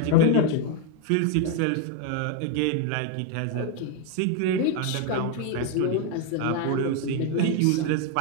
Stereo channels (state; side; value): different; both; correlation 0.01